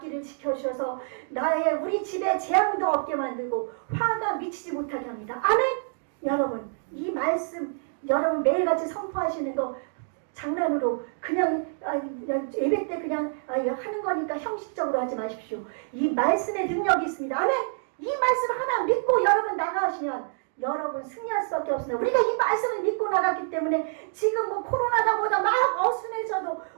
지켜주셔서 우리 집에 재앙도 없게 만들고 화가 미치지 못하게 합니다. 아멘. 여러분, 이 말씀 여러분 매일같이 선포하시는 거 장난으로 그냥 예배 때 그냥 하는 거니까 형식적으로 하지 마십시오. 이 말씀의 능력이 있습니다. 아멘. 이 말씀 하나 믿고 여러분 나가시면 여러분 승리할 수밖에 없습니다. 우리가 이 말씀을 믿고 나갔기 때문에 지금 코로나가 보다 막 어순해져도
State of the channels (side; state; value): left; silent; digital silence